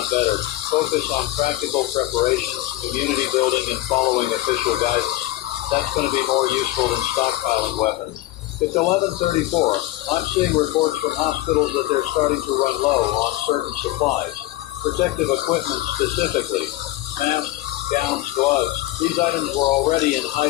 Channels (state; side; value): quieter; right; 16.6 dB